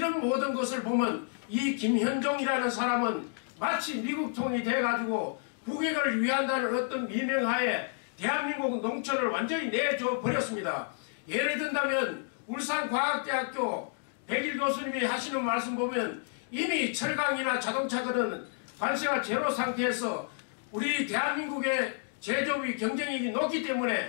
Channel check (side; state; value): right; silent; 58 dB below the other